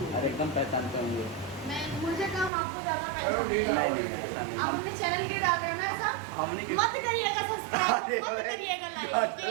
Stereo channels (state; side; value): drops out; left; at 2.5 s